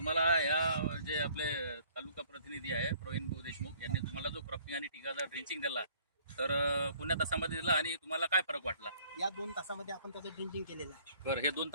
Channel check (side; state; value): both; inverted; correlation -0.58